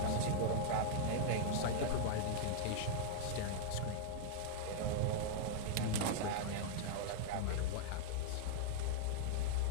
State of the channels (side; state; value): both; different; correlation -0.01